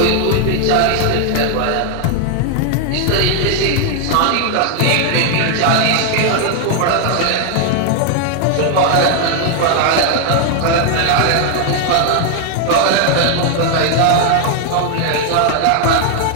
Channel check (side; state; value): both; different; correlation 0.00